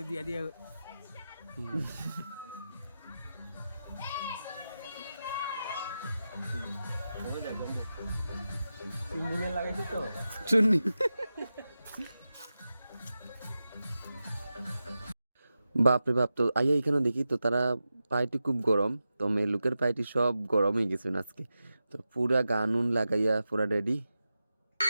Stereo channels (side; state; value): both; inverted; correlation -0.92